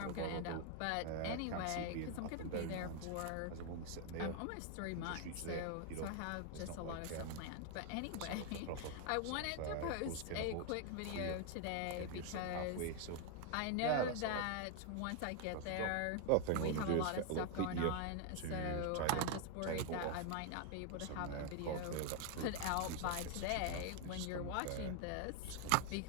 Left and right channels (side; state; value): both; different; correlation 0.00